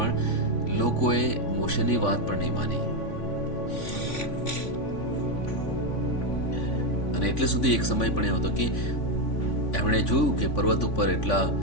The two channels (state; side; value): late; right; 3.5 ms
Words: લોકોએ મોશેની વાત પણ નહીં માની. અને એટલે સુધી એક સમય પણ એવો હતો કે એમણે જોયું કે પર્વત ઉપર એટલી